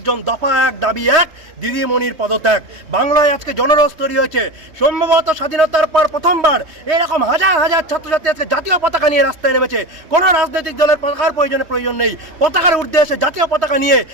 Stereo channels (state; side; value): late; left; 3.2 ms